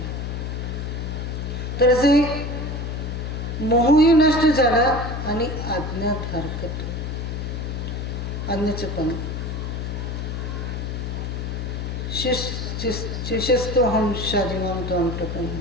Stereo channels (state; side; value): noise; left; hum, 4 dB below the sound